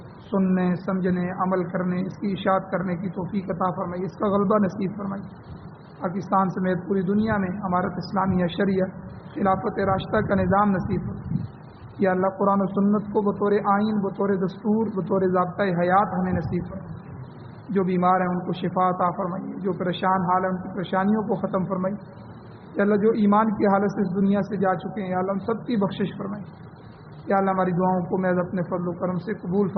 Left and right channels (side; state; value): both; identical; correlation 1.00